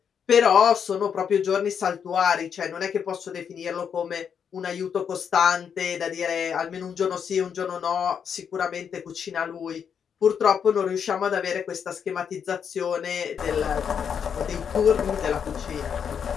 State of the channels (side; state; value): right; quieter; 7.4 dB